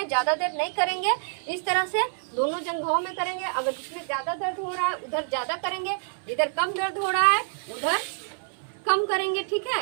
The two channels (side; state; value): left; silent; 59 dB below the other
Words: ज़्यादा देर नहीं करेंगे। इस तरह से दोनों जंघों में करेंगे। अगर जिसमें ज़्यादा दर्द हो रहा है उधर ज़्यादा करेंगे, इधर कम दर्द हो रहा है उधर कम करेंगे। ठीक